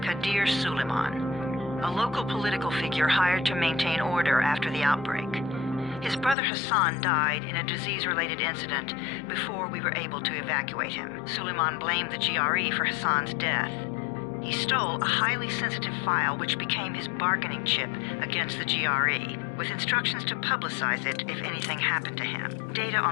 Kadir Suleiman, a local political figure hired to maintain order after the outbreak. His brother Hassan died in a disease-related incident before we were able to evacuate him. Suleiman blamed the GRE for Hassan's death. He stole a highly sensitive file which became his bargaining chip against the GRE, with instructions to publicize it if anything happened to him. Data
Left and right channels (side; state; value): right; drops out; at 6.4 s